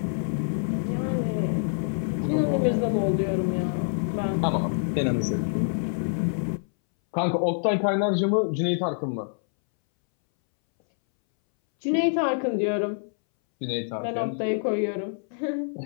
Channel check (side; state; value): right; silent; 61 dB below the other